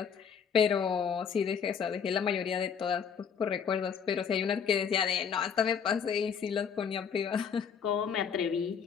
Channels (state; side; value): quieter; right; 7.0 dB